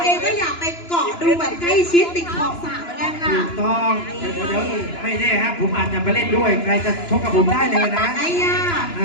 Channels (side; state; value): right; late; 2.9 ms